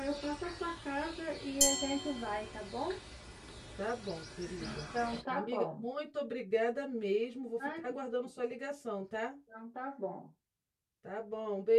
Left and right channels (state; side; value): identical; both; correlation 1.00